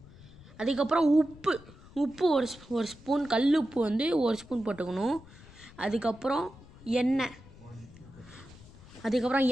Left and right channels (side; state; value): left; noise; rumble, 21 dB below the sound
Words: அதுக்கப்புறம் உப்பு ஒரு ஸ்பூன், கல் உப்பு ஒரு ஸ்பூன் போட்டுக்கணும். அதுக்கப்புறம்